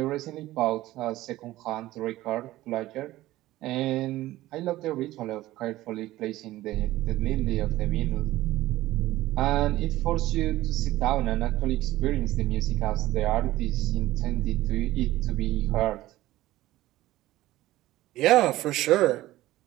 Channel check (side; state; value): left; quieter; 16.3 dB